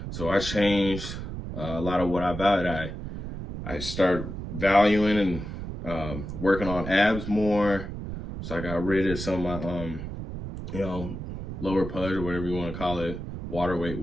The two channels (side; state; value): right; noise; rumble, 7 dB below the sound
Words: So I changed a lot of what I valued. I started valuing and working on abs more. So I got rid of some of my, lower pudge or whatever you want to call it, water weight,